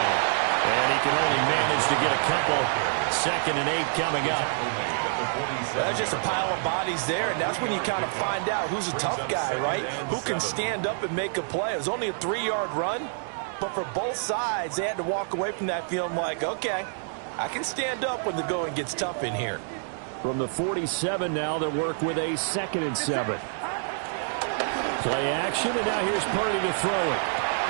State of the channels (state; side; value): silent; left; digital silence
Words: And he can only manage to get a couple. 2nd and 8 coming up. That's just a pile of bodies there, and that's when you kind of find out who's a tough guy, right? Who can stand up and make a play. It was only a 3-yard run, but for both sides, they had to walk away from that feeling like, okay, I can stand up when the going gets tough in here. From the 47 now, they'll work with a 2nd and 7. Play action, and now here's Purdy to throw it.